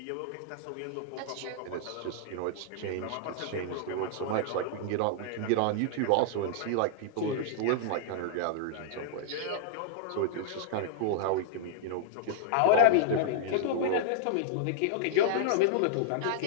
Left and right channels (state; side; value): different; both; correlation -0.01